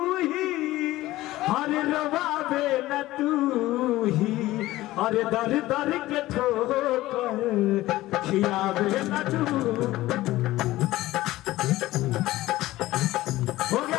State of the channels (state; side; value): quieter; right; 16.8 dB